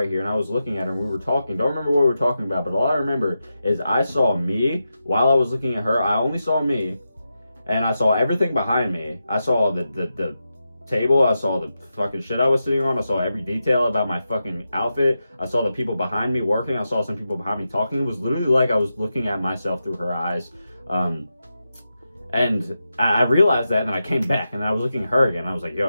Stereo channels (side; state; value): both; inverted; correlation -0.89